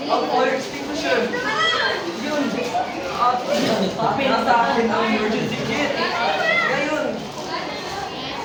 Ang fire extinguisher! Yun! At nasa akin ang emergency kit! Ngayon!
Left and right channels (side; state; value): both; identical; correlation 1.00